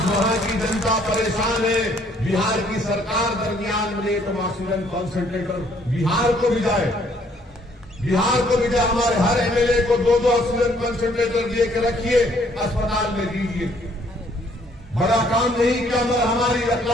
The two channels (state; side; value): normal; both; correlation 0.64